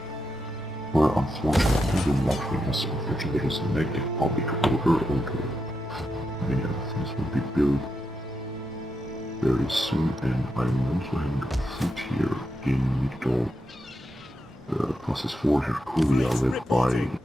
Where unfortunately the luxury has unfortunately there is a negative public odor, many other things will be built very soon, and I'm also having a foot here in Migdol, process 4 Herculia led by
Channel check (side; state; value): both; normal; correlation 0.85